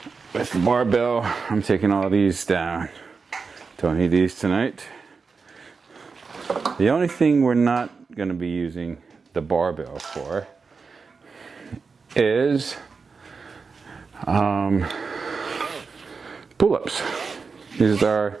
With the barbell, I'm taking all these down. Don't need these tonight. The only thing we're not going to be using the barbell for is pull-ups. These are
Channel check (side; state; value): left; quieter; 4.9 dB